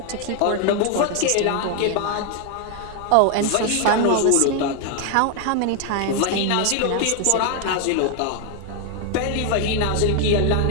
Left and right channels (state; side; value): different; both; correlation 0.00